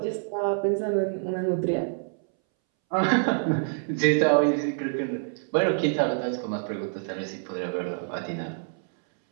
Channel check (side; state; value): left; silent; 60 dB below the other